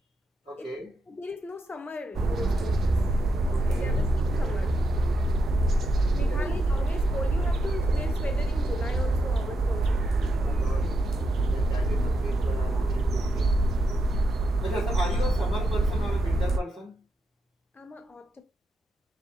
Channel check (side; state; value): both; normal; correlation 0.82